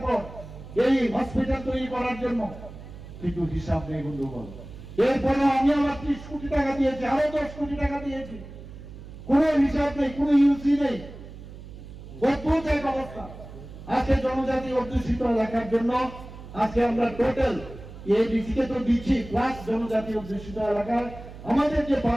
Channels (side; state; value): right; noise; hum, 15 dB below the sound